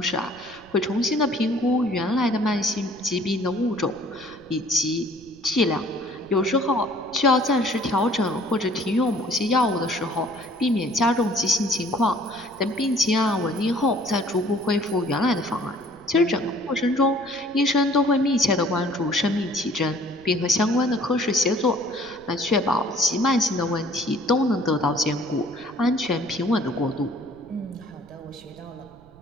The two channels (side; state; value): right; noise; rumble, 25 dB below the sound